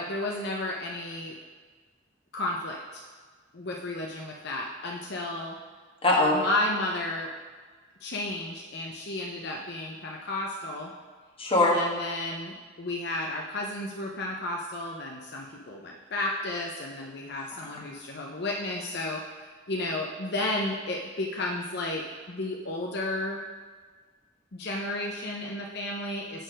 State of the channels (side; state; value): both; normal; correlation 0.14